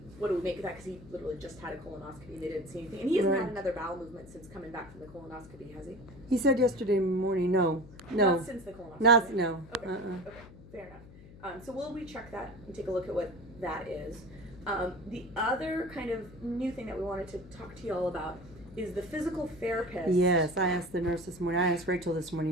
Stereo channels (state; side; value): noise; left; hum, 19 dB below the sound